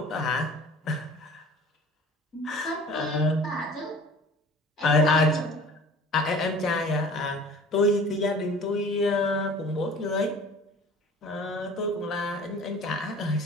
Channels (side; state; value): both; normal; correlation 0.45